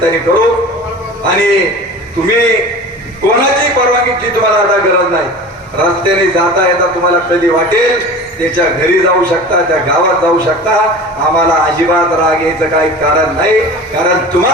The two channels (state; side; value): normal; both; correlation 0.36